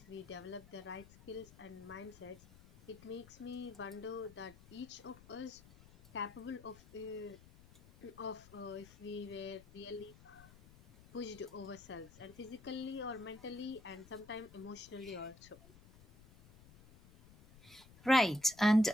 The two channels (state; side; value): noise; left; rumble, 21 dB below the sound